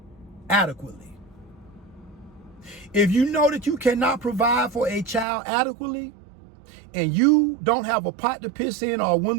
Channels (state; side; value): drops out; left; at 5.2 s